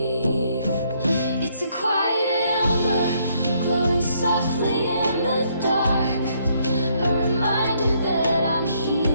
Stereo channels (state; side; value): inverted; both; correlation -0.70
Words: It's a quiet ember glowing softly in the dark, a reminder that I'm